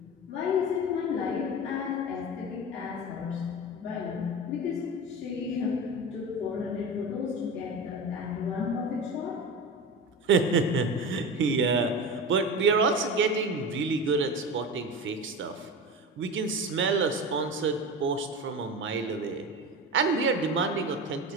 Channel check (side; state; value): both; normal; correlation 0.27